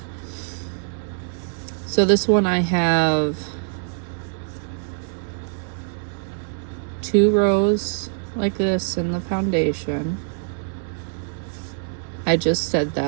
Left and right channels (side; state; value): left; silent; digital silence